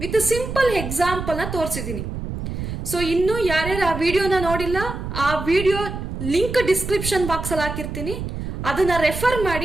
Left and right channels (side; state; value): right; noise; rumble, 6 dB below the sound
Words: with simple example ನ ತೋರಿಸಿದ್ದೀನಿ. So ಇನ್ನು ಯಾರ್ಯಾರು ಆ ವಿಡಿಯೋನ ನೋಡಿಲ್ಲ, ಆ ವಿಡಿಯೋ ಲಿಂಕ್ ಡಿಸ್ಕ್ರಿಪ್ಷನ್ ಬಾಕ್ಸ್ ಅಲ್ಲಿ ಹಾಕಿರ್ತೀನಿ, ಅದನ್ನ ರೆಫರ್